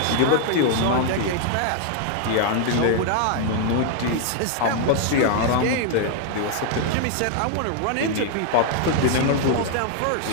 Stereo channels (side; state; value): both; different; correlation 0.00